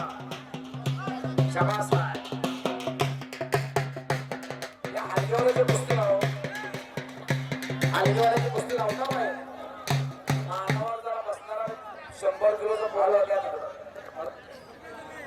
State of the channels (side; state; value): both; identical; correlation 1.00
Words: शाबास आहे. या हलगीवाल्याची कुस्ती लाव. हलगीवाल्याची कुस्ती लावता बाय. मानावर जरा बसणारा 100 किलोचा बॉल होत्या तिकडं.